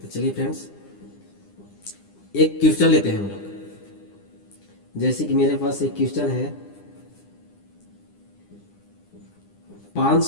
चलिए फ्रेंड्स, एक क्वेश्चन लेते हैं हम लोग। जैसे कि मेरे पास एक क्वेश्चन है,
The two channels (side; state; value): right; late; 9.9 ms